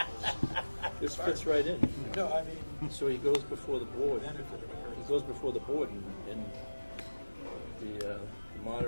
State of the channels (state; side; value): inverted; both; correlation -1.00